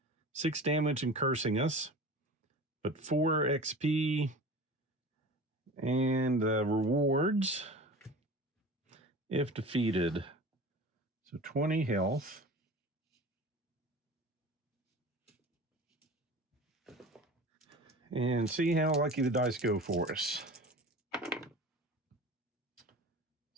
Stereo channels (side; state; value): both; normal; correlation 0.37